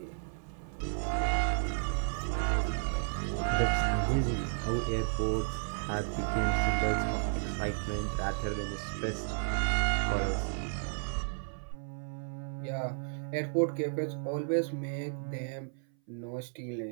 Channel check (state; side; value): silent; left; 56 dB below the other